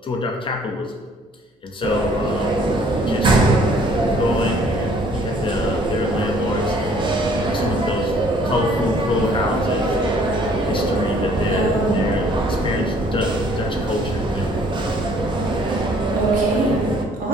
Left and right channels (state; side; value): normal; both; correlation 0.59